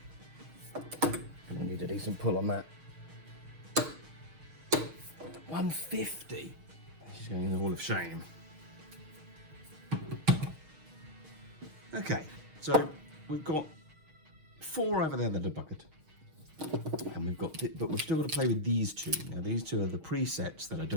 And I need a decent pull on that. 150. She's going in the Hall of Shame. Okay, so we've got 4 over there that are bucketed. And we've got, but we've still got to play with these 2. Now these 2 are the presets that I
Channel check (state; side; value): late; left; 6.5 ms